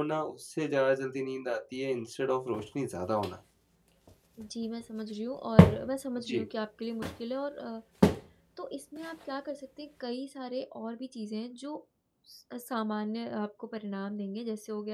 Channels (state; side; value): identical; both; correlation 1.00